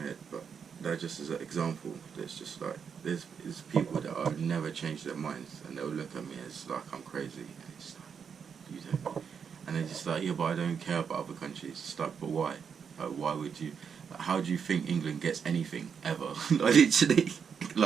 head. But that just is an example. There's just, like, there's people that I've never changed their minds, and they'll look at me as like I'm crazy, and it's like, you don't. And they're just like, yeah, but I don't care about other countries. It's like, but why? Like, why would you? Like, how do you think England gets anything ever? Like, literally,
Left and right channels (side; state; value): left; quieter; 6.7 dB